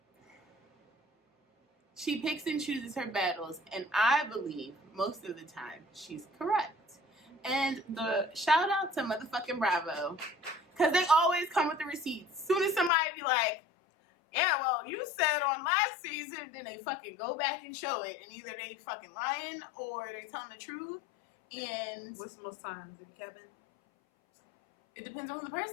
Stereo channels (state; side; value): drops out; right; at 12.9 s